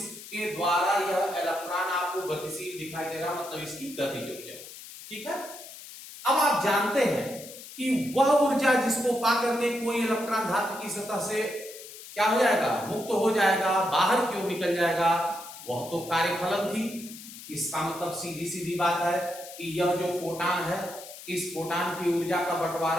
द्वारा यह इलेक्ट्रॉन आपको गतिशील दिखाई दे रहा, मतलब इसकी गतिज ऊर्जा, ठीक है। अब आप जानते हैं कि वह ऊर्जा जिसको पाकर के कोई इलेक्ट्रॉन धातु की सतह से क्या हो जाएगा, मुक्त हो जाएगा, बाहर की ओर निकल जाएगा, वह तो कार्यफलन थी। इसका मतलब सीधी सीधी बात है कि यह जो फोटान है, इस फोटान की ऊर्जा का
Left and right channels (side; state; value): left; noise; hiss, 14 dB below the sound